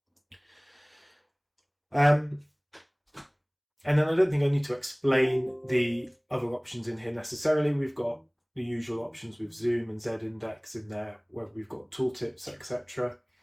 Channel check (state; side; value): identical; both; correlation 1.00